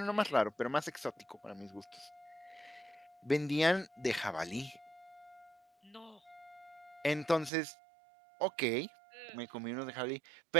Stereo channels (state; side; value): drops out; left; at 7.5 s